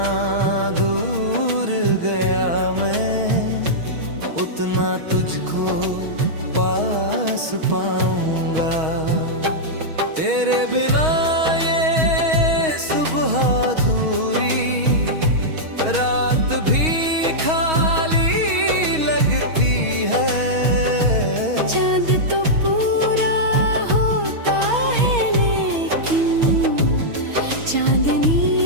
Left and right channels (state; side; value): late; left; 6.3 ms